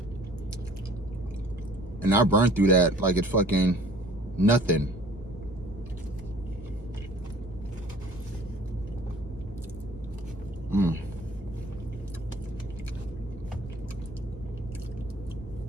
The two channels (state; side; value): normal; both; correlation 0.51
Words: and I burned through that like it's fucking nothing.